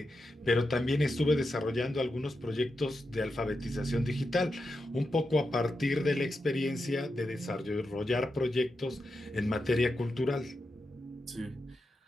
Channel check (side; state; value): both; normal; correlation 0.88